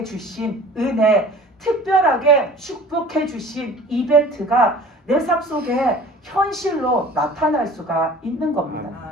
주신 은혜, 특별하게 축복해 주신 이벤트가 내 삶 속에 현실로 나타날 수가 있는 겁니다.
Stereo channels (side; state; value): both; normal; correlation 0.45